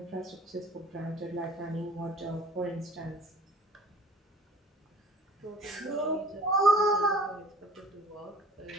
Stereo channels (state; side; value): normal; both; correlation 0.49